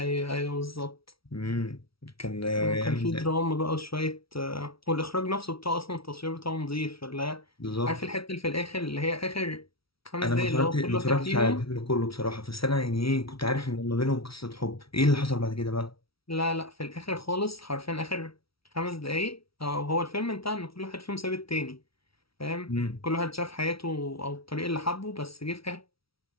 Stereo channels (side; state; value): right; late; 0.75 ms